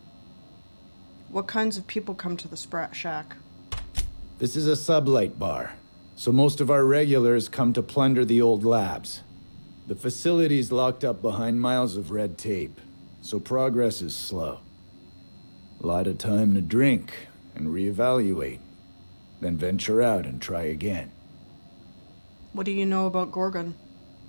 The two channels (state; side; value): inverted; both; correlation -1.00